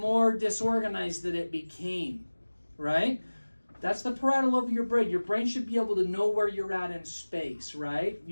disorganized that it became, right? That's the parietal lobe of your brain. Your brain should be able to know where you're at in space, right?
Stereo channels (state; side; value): inverted; both; correlation -1.00